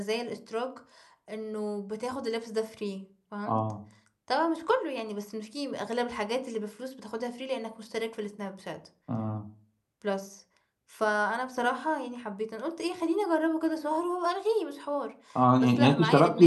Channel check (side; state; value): both; identical; correlation 1.00